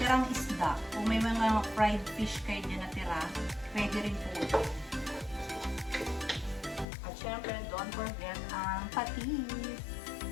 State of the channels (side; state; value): right; drops out; at 6.9 s